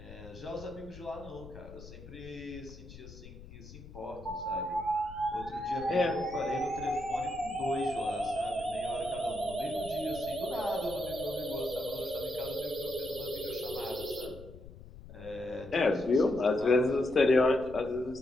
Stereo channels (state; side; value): noise; left; rumble, 16 dB below the sound